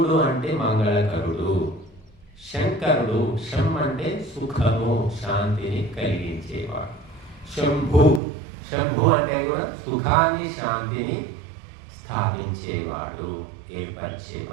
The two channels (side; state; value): left; drops out; at 8.2 s